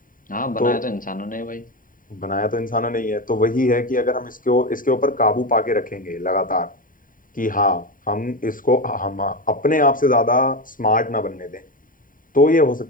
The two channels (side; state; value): right; late; 0.40 ms